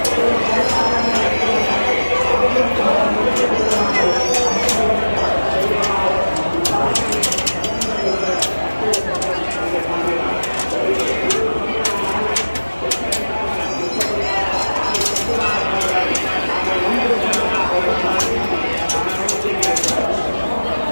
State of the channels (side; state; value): both; inverted; correlation -1.00